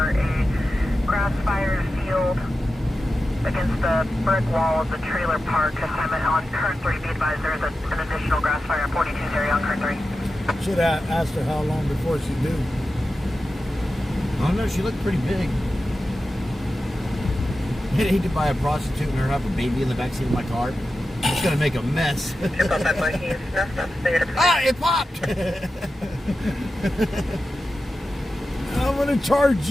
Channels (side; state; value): both; normal; correlation 0.92